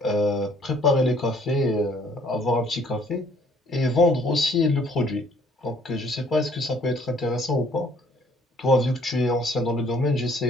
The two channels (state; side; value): normal; both; correlation 0.60